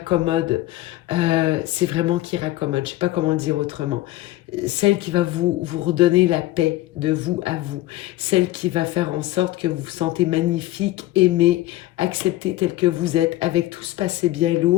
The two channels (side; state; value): right; quieter; 16.5 dB